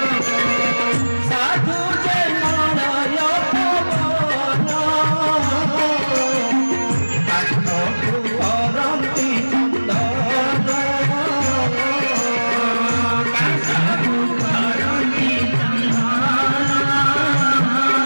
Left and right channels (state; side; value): inverted; both; correlation -1.00